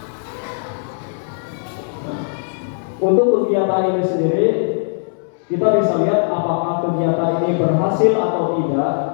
Untuk kegiatan ini sendiri, kita bisa lihat apakah kegiatan ini berhasil atau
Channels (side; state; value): right; silent; 66 dB below the other